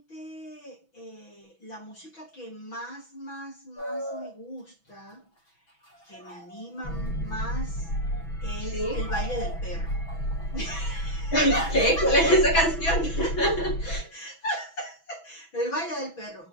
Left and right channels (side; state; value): right; late; 6.1 ms